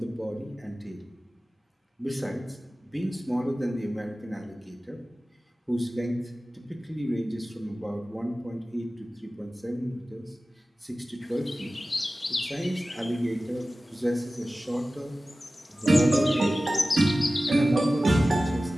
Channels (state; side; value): normal; both; correlation 0.96